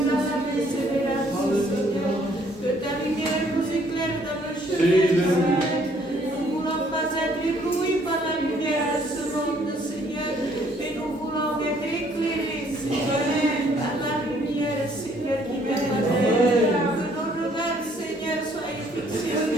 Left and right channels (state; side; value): normal; both; correlation 0.63